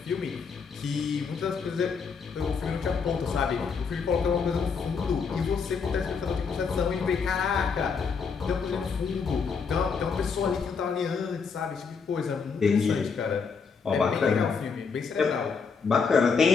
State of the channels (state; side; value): quieter; right; 5.5 dB